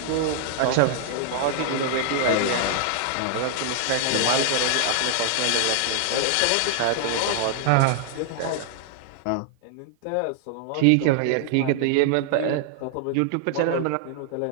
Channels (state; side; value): different; both; correlation -0.01